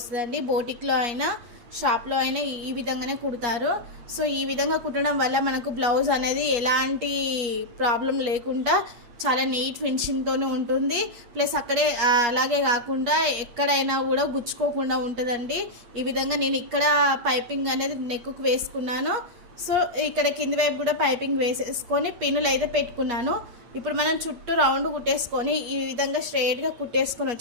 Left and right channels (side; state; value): left; late; 8.4 ms